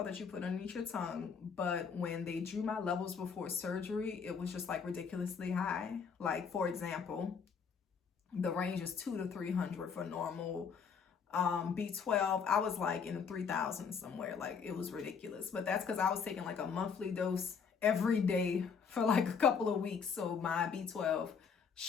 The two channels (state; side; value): quieter; right; 6.2 dB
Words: that you put underneath your tongue, but when they drew my levels before surgery, it was just like ridiculously high. Like, for example, the range is 200 to 300 for normal B12. I was like in the 3,000 somewhere. Like, it was ridiculous. But that's because I was taking like a monthly dose every day for like a couple of weeks. So my B12